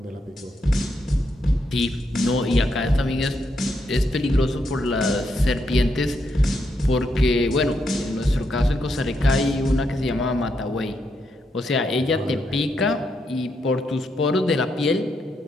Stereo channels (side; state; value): both; normal; correlation 0.80